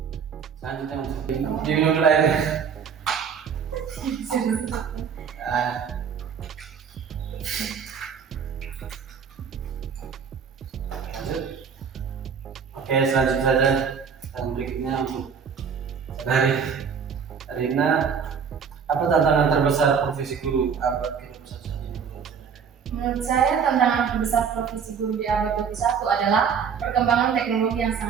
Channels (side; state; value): left; quieter; 6.7 dB